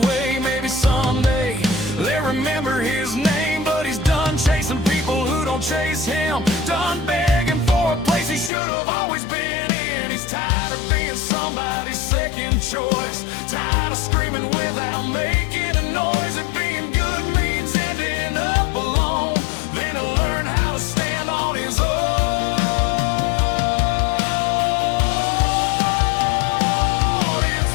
Maybe someday they'll remember his name. But he's done chasing people who don't chase him, done begging for a place he should have always been in. He's tired of being somebody's second choice, tired of screaming without making a noise. And being good means ending up alone, then he'll learn how to stand on his own. It's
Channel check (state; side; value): drops out; right; at 8.5 s